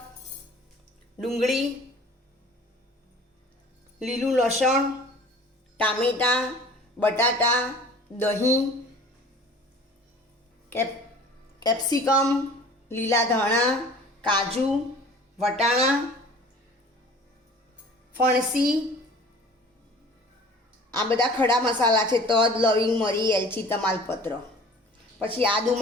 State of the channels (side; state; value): both; normal; correlation 0.46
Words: ડુંગળી, લીલું લસણ, ટામેટાં, બટાટા, દહીં, કેપ્સિકમ, લીલા ધાણા, કાજુ, વટાણા, ફણસી, આ બધા ખડા મસાલા છે। તજ, લવિંગ, મરી, એલચી, તમાલપત્ર, પછી આદુ